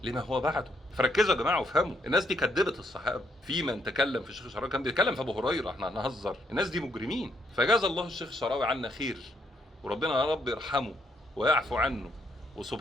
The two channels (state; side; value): normal; both; correlation 0.73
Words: لما هو بعده. فركزوا يا جماعه وافهموا، الناس دي كدبت الصحابه. في من تكلم في الشيخ الشعراوي كان بيتكلم في ابو هريره، احنا هنهزر؟ الناس دي مجرمين. فجاز الله الشيخ الشعراوي عنا خير، وربنا يا رب يرحمه ويعفو عنه.